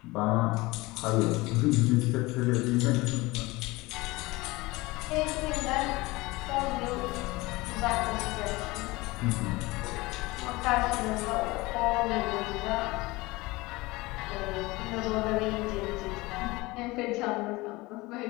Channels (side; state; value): right; quieter; 21.8 dB